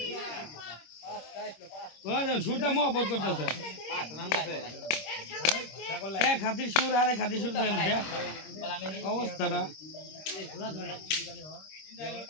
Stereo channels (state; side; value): late; right; 26 ms